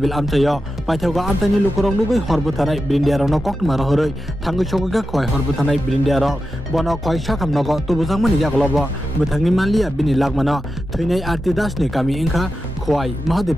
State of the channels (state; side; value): normal; both; correlation 0.91